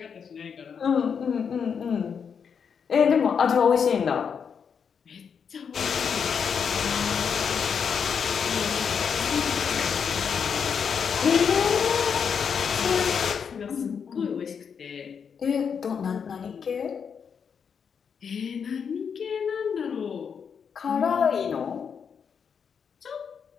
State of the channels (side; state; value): right; quieter; 6.8 dB